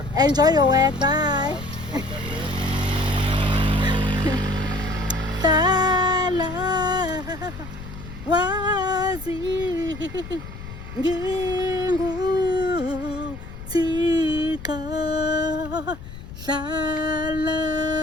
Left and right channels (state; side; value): noise; left; rumble, 12 dB below the sound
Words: Enjoy your work. Bye. Sala wazi ngingu tika sala